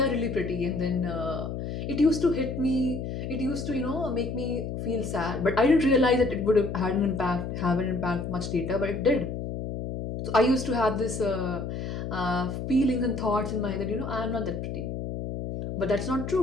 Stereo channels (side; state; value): left; noise; hum, 5 dB below the sound